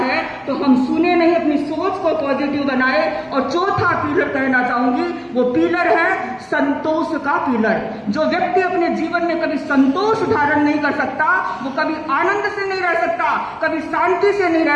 तो हम सुने नहीं, अपनी सोच को पॉजिटिव बनाए। और चौथा पिलर कहना चाहूंगी, वो पिलर है संतोष का पिलर। जो व्यक्ति अपने जीवन में कभी संतोष धारण नहीं कर सकता, वो कभी आनंद से नहीं रह सकता, कभी शांति से नहीं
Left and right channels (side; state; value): both; identical; correlation 1.00